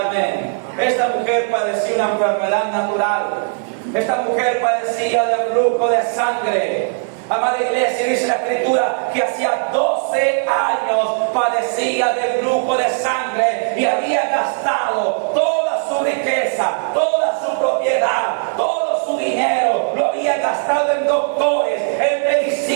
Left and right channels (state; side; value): silent; left; 67 dB below the other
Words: Esta mujer padecía una enfermedad natural. Esta mujer padecía de flujo de sangre. Amada iglesia, dice la Escritura que hacía 12 años padecía de flujo de sangre y había gastado toda su riqueza, toda su propiedad, todo su dinero, lo había gastado en doctores, en